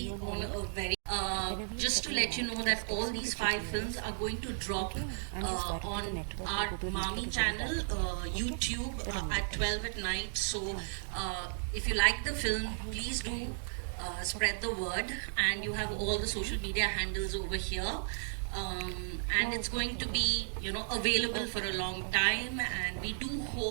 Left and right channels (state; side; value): silent; left; digital silence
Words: on a very. Just to let you know that all these 5 films are going to drop on our Mami channel, YouTube, at 12 at night. So if you like the film, please do spread the word, and you have all the social media handles over here. And it's going to be, available for a long time, and we do